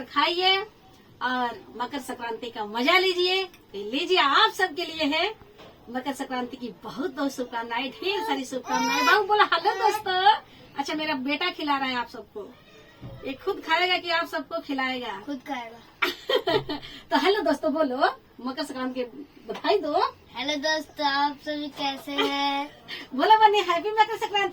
खाइए और मकर संक्रांति का मजा लीजिए। लीजिए आप सबके लिए है मकर संक्रांति की बहुत बहुत शुभकामनाएं, ढेर सारी शुभकामनाएं। बाबू बोला हेलो दोस्तों। अच्छा, मेरा बेटा खिला रहा है आप सबको। ये खुद खाएगा कि आप सबको खिलाएगा? खुद खाएगा। तो हेलो दोस्तों बोलो, मकर संक्रांति की बधाई दो। हेलो दोस्तों, आप सभी कैसे हैं? बोलो बनी, हैप्पी मकर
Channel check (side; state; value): both; identical; correlation 1.00